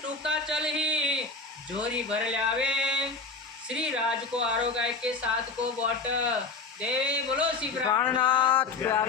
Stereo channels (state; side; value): quieter; right; 4.2 dB